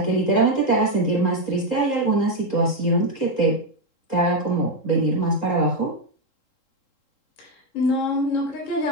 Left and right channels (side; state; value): right; late; 3.8 ms